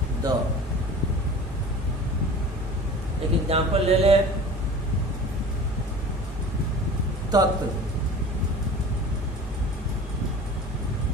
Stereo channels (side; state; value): both; normal; correlation 0.40